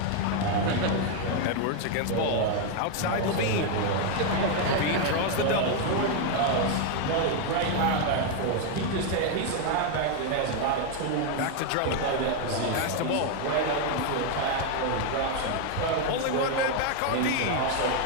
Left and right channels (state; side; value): different; both; correlation 0.01